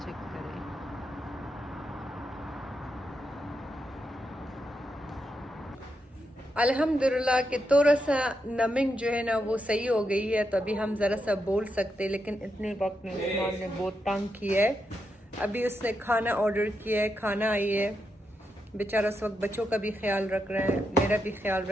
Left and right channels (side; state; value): both; normal; correlation 0.84